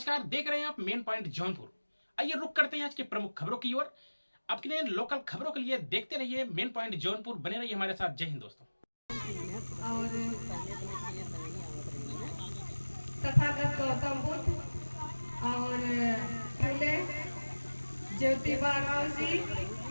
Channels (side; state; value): both; inverted; correlation -1.00